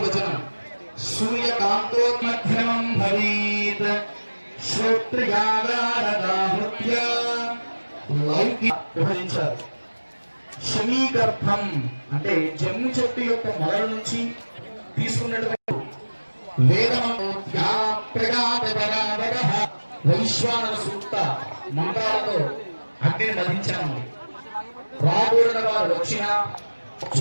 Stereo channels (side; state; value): both; inverted; correlation -1.00